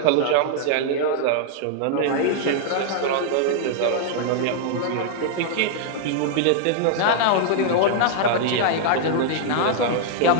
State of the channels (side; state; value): both; different; correlation -0.01